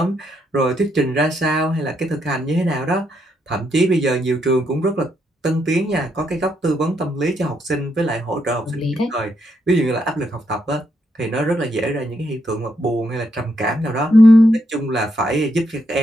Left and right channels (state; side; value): normal; both; correlation 0.78